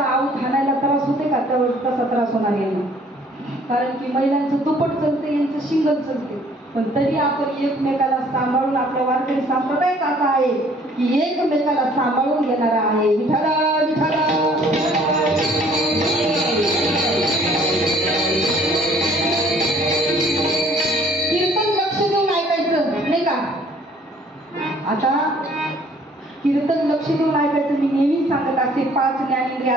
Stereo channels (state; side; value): normal; both; correlation 0.58